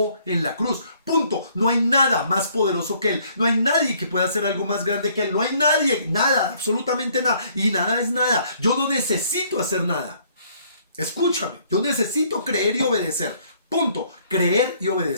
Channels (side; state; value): both; inverted; correlation -0.63